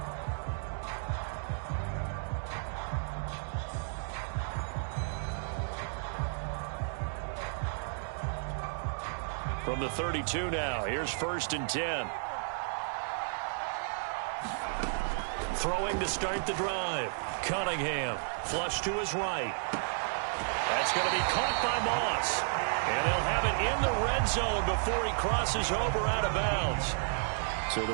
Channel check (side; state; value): left; silent; digital silence